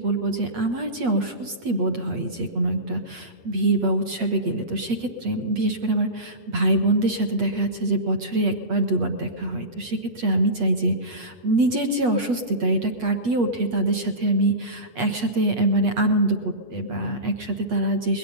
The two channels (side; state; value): left; late; 8.3 ms